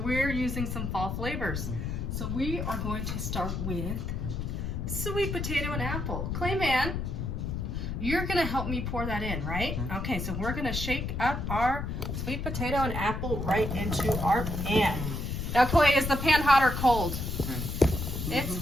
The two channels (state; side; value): noise; left; rumble, 3 dB below the sound